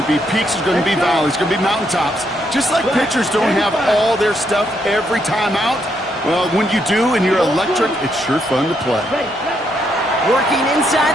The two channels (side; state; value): both; normal; correlation 0.76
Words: be peaks, there's going to be valleys, there's going to be mountaintops. Just like pitchers don't have all their stuff every time out, well, when you do and you're electric, it's sure fun to play. Working